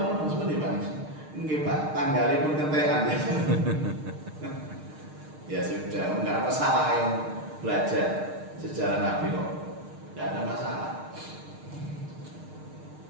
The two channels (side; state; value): left; late; 6.5 ms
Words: seperti Pak. Nggih Pak, tanggalnya pun kentekan. Ya sudah, enggak ada masalah yang belajar sejarah Nabi kok. Enggak ada masalah.